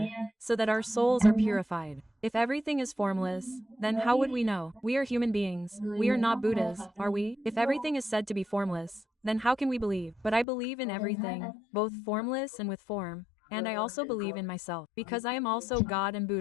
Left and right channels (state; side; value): drops out; right; at 10.5 s